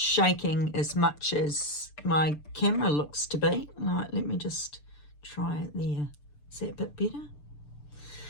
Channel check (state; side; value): late; right; 6.8 ms